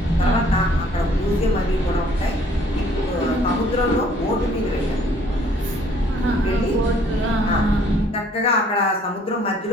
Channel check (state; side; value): normal; both; correlation 0.60